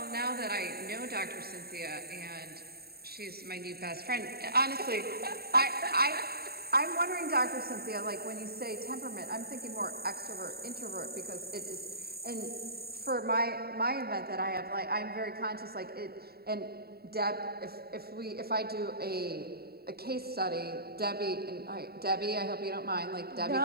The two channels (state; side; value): late; left; 0.45 ms